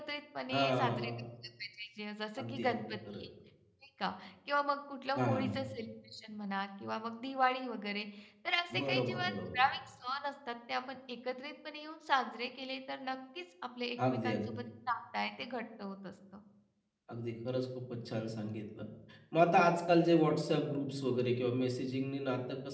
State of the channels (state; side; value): identical; both; correlation 1.00